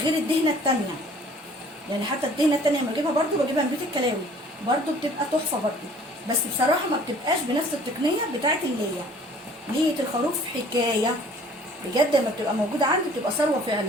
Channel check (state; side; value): normal; both; correlation 0.53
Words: الدهنه التانيه. يعني حتى الدهنه التانيه لما بجيبها برده بجيبها من بيت الكلاوي برده بتبقى تحفه برده، بس بصراحه ما بتبقاش بنفس التقنيه بتاعت الليه. ليه الخروف حكايه بجد، لما بتبقى موجوده عندي بتبقى ثروه